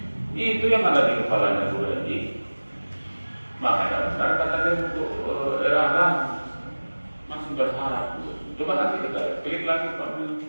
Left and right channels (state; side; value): inverted; both; correlation -1.00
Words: Itu yang ada di kepalanya guru MI. Makanya benar katanya untuk era masih berharap. Coba nanti kita klik lagi Pak.